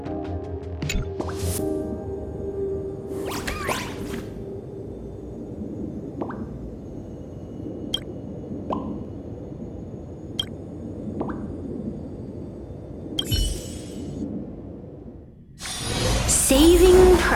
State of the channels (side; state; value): both; identical; correlation 1.00